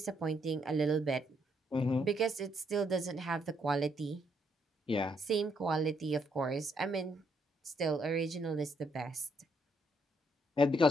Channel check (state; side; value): normal; both; correlation 0.73